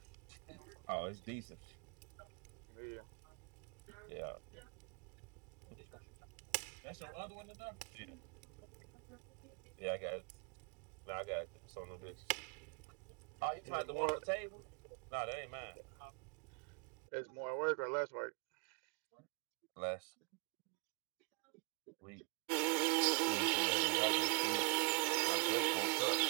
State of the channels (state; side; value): quieter; left; 33.9 dB